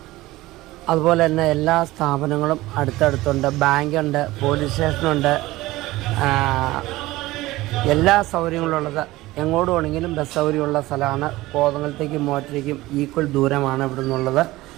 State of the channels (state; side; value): quieter; left; 18.4 dB